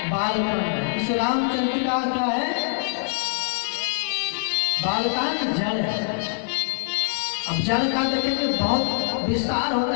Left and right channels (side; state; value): right; silent; digital silence